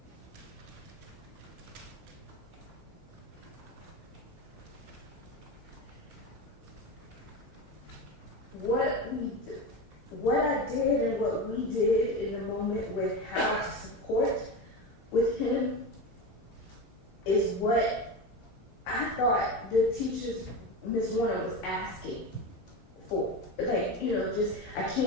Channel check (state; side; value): normal; both; correlation 0.22